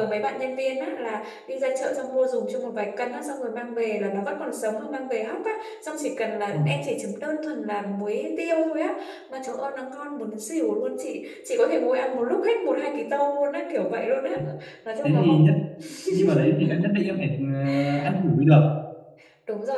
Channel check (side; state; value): both; identical; correlation 1.00